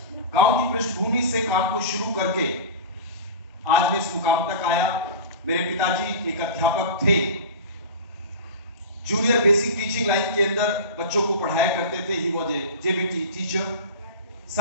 गांव की पृष्ठभूमि से काम को शुरू करके आज मैं इस मुकाम तक आया। मेरे पिताजी एक अध्यापक थे, जूनियर बेसिक टीचिंग लाइन के अंदर बच्चों को पढ़ाया करते थे। He was a JBT teacher.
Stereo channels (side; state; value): both; inverted; correlation -0.30